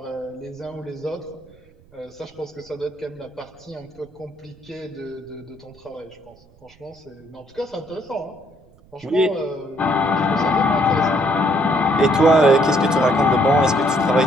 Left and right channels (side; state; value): right; noise; rumble, 28 dB below the sound